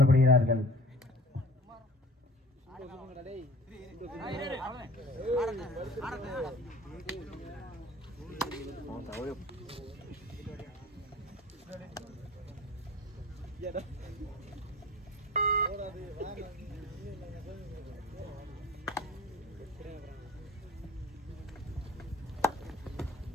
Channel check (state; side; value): normal; both; correlation 0.43